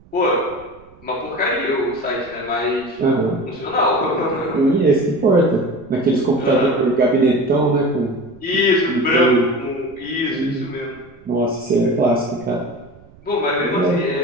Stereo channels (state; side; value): noise; right; rumble, 26 dB below the sound